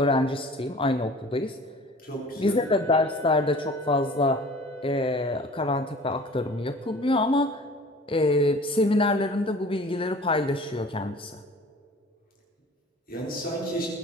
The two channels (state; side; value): normal; both; correlation 0.46